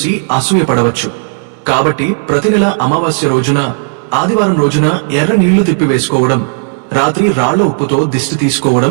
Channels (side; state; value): left; silent; digital silence